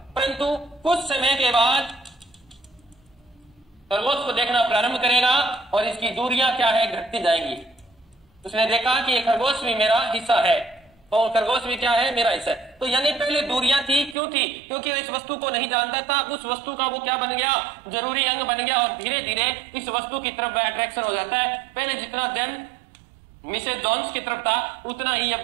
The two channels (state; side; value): drops out; left; at 14.2 s